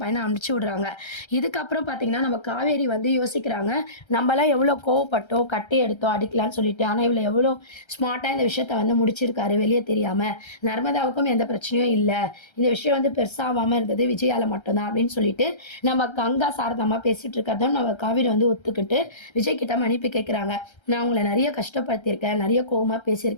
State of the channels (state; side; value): late; right; 1.3 ms